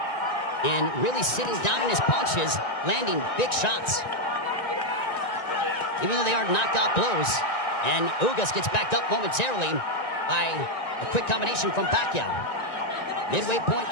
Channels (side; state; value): right; late; 1.9 ms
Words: and really sitting down in his punches, landing big shots. Even though they are knockout blows. And Ugas gets backed up momentarily by a quick combination from Pacquiao. Midway point